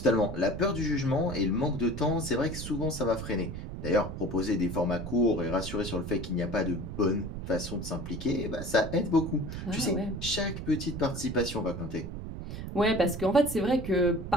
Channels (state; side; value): noise; right; rumble, 7 dB below the sound